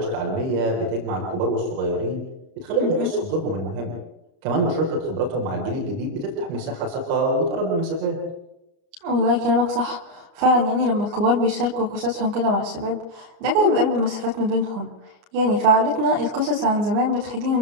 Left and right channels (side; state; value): left; late; 32 ms